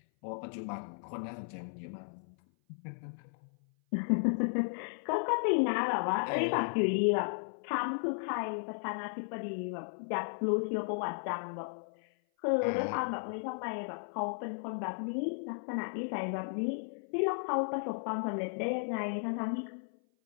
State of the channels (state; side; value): silent; right; 55 dB below the other